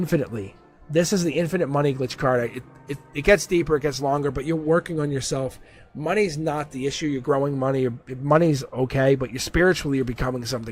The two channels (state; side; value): identical; both; correlation 1.00